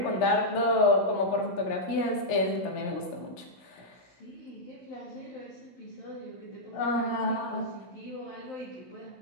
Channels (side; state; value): right; late; 16 ms